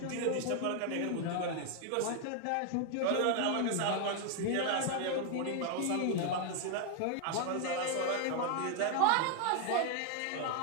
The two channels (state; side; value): different; both; correlation 0.00